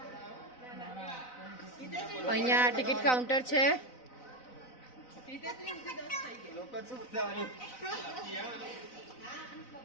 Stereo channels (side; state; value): right; late; 4.0 ms